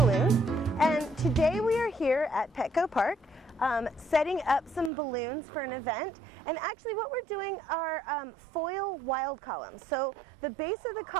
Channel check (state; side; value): drops out; left; at 4.9 s